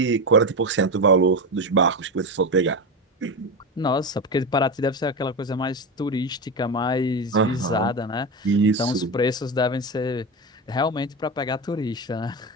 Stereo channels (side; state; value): both; normal; correlation 0.17